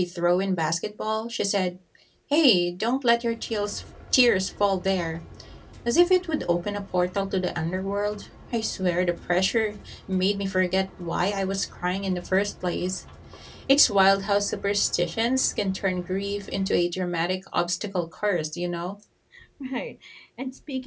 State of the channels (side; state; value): both; identical; correlation 1.00